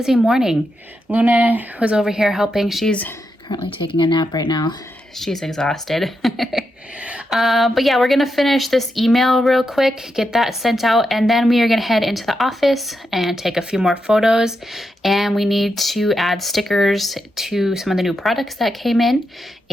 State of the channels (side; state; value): both; normal; correlation 0.85